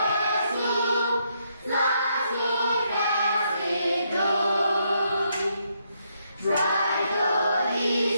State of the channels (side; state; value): both; inverted; correlation -0.76